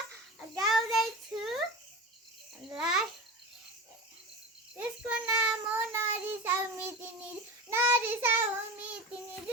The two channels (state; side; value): normal; both; correlation 0.29